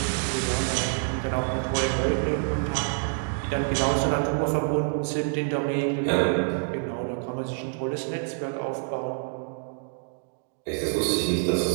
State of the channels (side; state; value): left; silent; 60 dB below the other